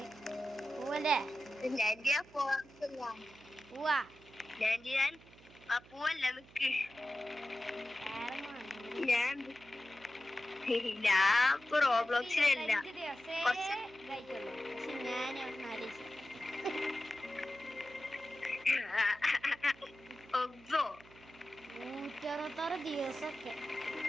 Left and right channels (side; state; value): right; noise; hum, 23 dB below the sound